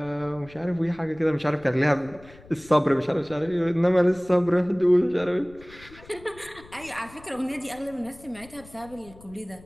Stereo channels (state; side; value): noise; left; rumble, 22 dB below the sound